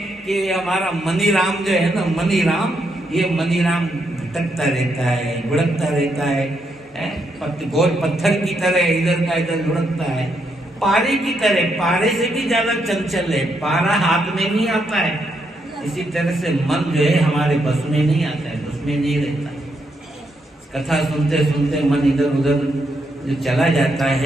कि हमारा मनी राम जो है ना, मनी राम, ये मनी राम भटकता रहता है, लुढ़कता रहता है, गोल पत्थर की तरह इधर का इधर लुढ़कता है, पारे की तरह, पारे से भी ज्यादा चंचल है, पारा हाथ में नहीं आता है। इसी तरह से मन जो है हमारे बस में नहीं आता है, बस में नहीं रहता। कथा सुनते सुनते मन इधर उधर जो चला जाता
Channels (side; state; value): both; normal; correlation 0.79